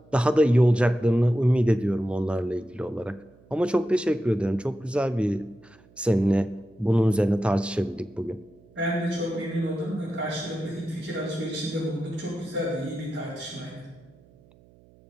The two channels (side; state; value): right; noise; hum, 28 dB below the sound